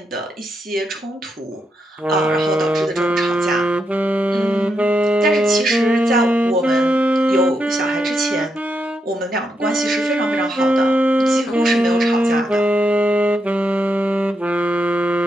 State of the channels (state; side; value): normal; both; correlation 0.82